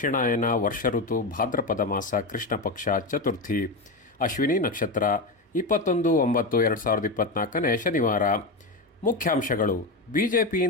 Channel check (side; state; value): right; quieter; 3.1 dB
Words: ವರ್ಷ ಋತು ಭಾದ್ರಪದ ಮಾಸ ಕೃಷ್ಣ ಪಕ್ಷ ಚತುರ್ಥಿ ಅಶ್ವಿನಿ ನಕ್ಷತ್ರ 21/9/2024 ಶನಿವಾರ. ಮುಖ್ಯಾಂಶಗಳು: